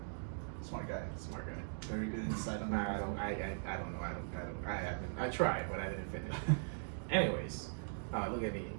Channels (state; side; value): silent; left; digital silence